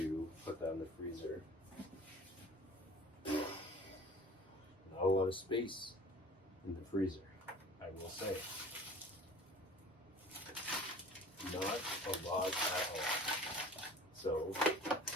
put that in the freezer. Not a lot of space in the freezer, I will say. Not a lot at all. So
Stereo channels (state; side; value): normal; both; correlation 0.44